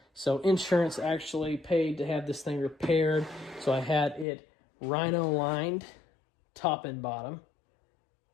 So insurance actually paid to have this thing repaired. So I had it rhino lined top and bottom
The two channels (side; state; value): right; drops out; at 4.2 s